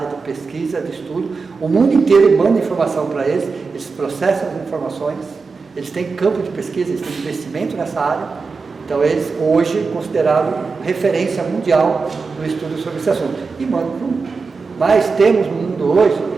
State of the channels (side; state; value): left; quieter; 4.6 dB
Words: de pesquisa, de estudo. O mundo inteiro manda informação para eles, eles processam as informações, eles têm campo de pesquisa, eles têm investimento nessa área. Então eles hoje considerados referência mundial no estudo sobre esse assunto. E mandam para o mundo. Mas temos no mundo hoje